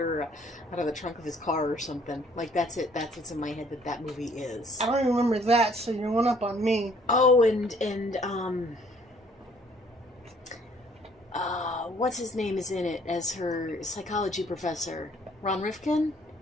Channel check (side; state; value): both; normal; correlation 0.60